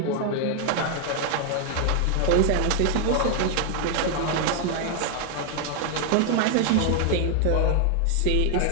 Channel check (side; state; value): both; different; correlation 0.00